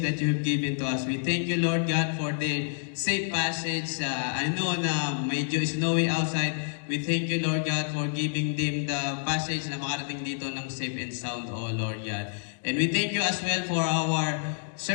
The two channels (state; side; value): silent; right; digital silence